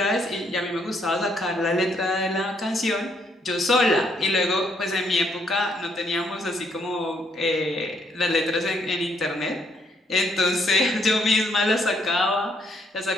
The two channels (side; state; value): both; normal; correlation 0.71